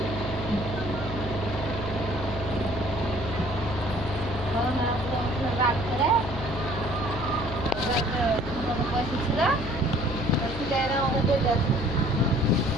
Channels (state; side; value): noise; left; hum, 8 dB below the sound